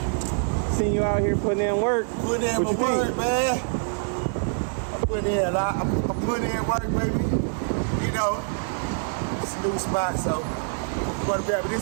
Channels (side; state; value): left; silent; digital silence